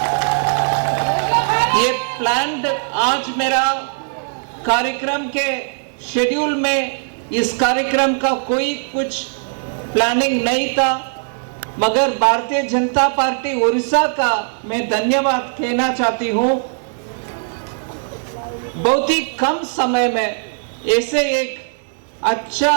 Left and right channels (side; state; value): left; silent; digital silence